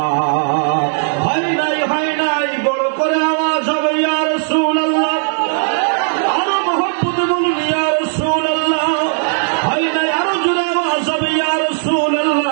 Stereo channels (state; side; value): silent; left; digital silence